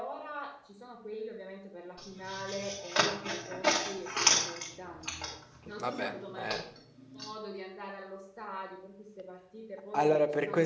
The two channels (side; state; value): both; identical; correlation 1.00